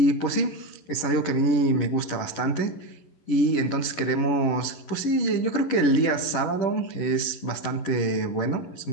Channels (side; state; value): right; late; 11 ms